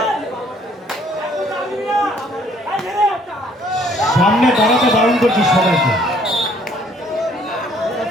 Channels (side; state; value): both; normal; correlation 0.61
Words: সামনে দাঁড়াতে বারণ করছিস সবাইকে।